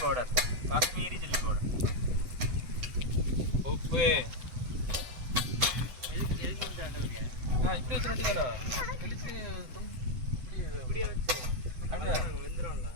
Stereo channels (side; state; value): left; late; 7.9 ms